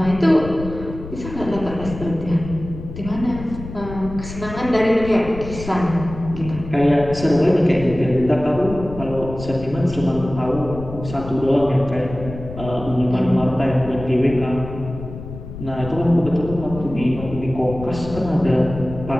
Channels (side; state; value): left; noise; rumble, 11 dB below the sound